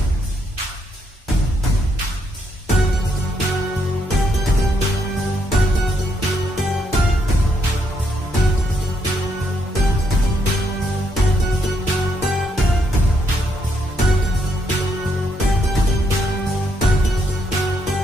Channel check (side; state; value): both; normal; correlation 0.76